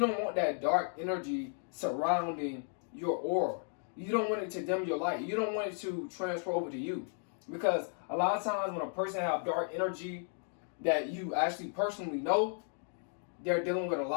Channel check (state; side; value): silent; right; 55 dB below the other